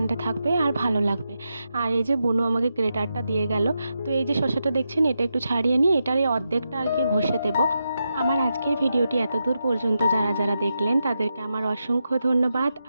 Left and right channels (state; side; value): inverted; both; correlation -0.87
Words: থাকবে আর ভালো লাগবে। আর এই যে বুনু আমাকে গ্রেটারটা দিয়ে গেল। তো এই যে শসাটা দেখছেন, এটা একটু ছাড়িয়ে নিই, এটার এই অর্ধেকটা আর কি ঘষে দেবো। আমার আজকের ভিডিওটি এতদূর পর্যন্ত যারা যারা দেখলেন তাদেরকে আমার অসংখ্য ধন্যবাদ